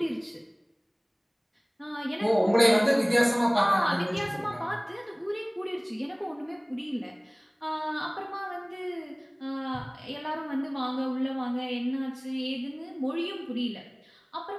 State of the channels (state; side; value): identical; both; correlation 1.00